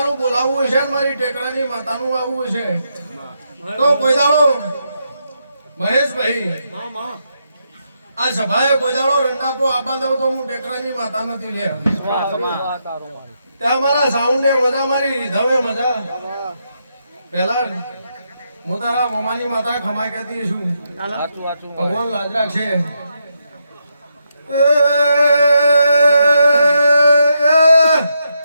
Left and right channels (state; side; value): inverted; both; correlation -0.81